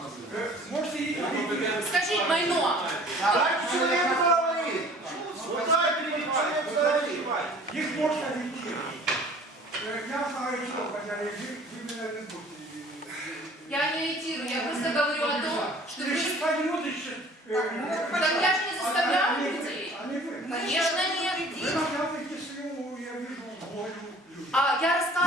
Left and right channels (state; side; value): normal; both; correlation 0.49